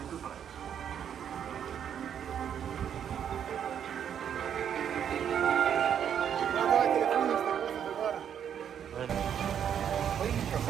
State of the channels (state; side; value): quieter; left; 8.8 dB